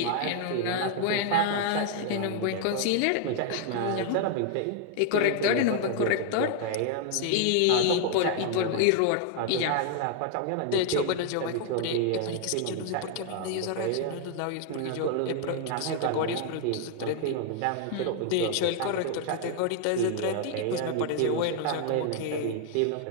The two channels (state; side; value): different; both; correlation 0.00